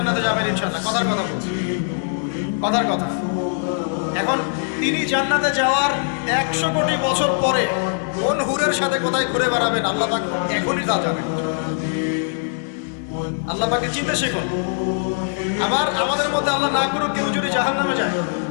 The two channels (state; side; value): silent; right; digital silence